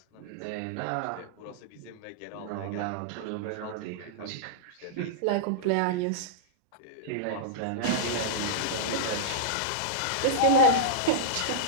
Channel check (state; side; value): different; both; correlation -0.03